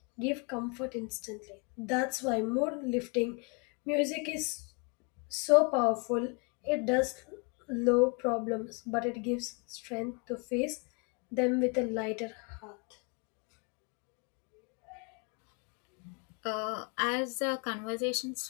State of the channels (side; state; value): right; quieter; 33.6 dB